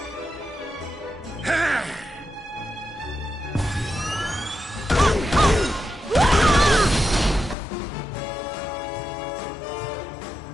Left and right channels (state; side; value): drops out; right; at 7.6 s